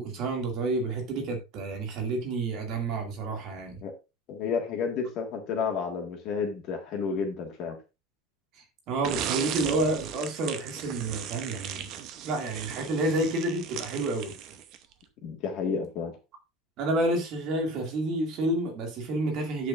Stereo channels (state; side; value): normal; both; correlation 0.33